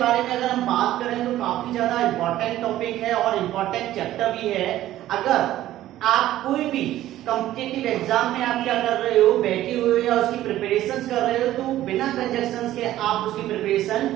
बारे में अगर हम बात करें तो काफी ज्यादा इंपॉर्टेंट टॉपिक है और इंपॉर्टेंट चैप्टर भी है। अगर आप कोई भी कॉम्पिटिटिव एग्जाम में आप क्या कर रहे हो, बैठे हुए हो या उसकी प्रिपरेशन कर रहे हो, तो बिना कंजक्शंस के आप उसकी प्रिपरेशन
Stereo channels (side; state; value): left; quieter; 13.9 dB